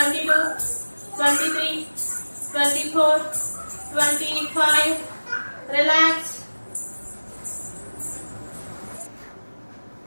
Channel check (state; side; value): inverted; both; correlation -1.00